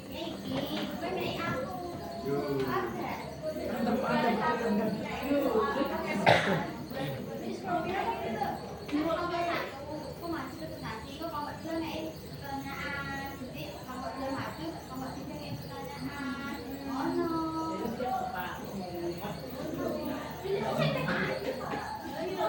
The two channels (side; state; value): both; identical; correlation 1.00